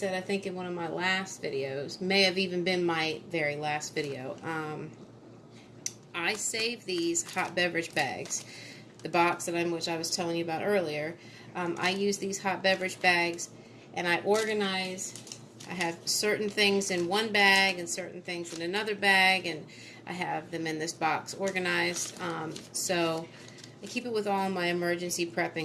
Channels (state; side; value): identical; both; correlation 1.00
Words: I think in one of my last videos, may have even been my very last video, I save these hot beverage bags. The box which I was telling you about earlier, I use these hot beverage bags, and I organize. I have certain things in one bag and certain things in another bag, and I have them in this box organized. So I keep it with all my emergency